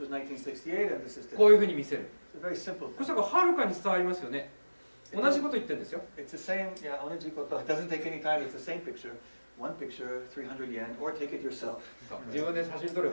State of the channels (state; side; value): inverted; both; correlation -1.00